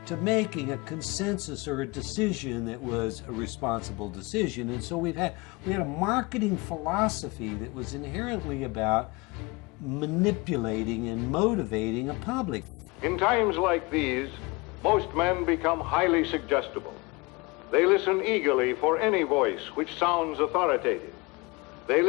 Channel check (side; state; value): right; quieter; 25.7 dB